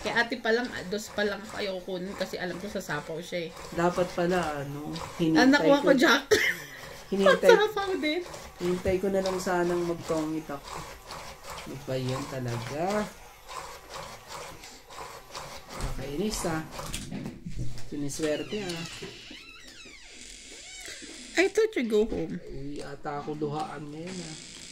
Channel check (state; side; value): identical; both; correlation 1.00